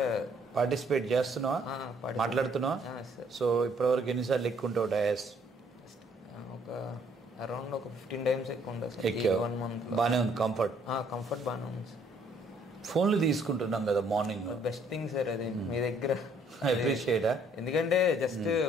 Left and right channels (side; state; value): both; normal; correlation 0.64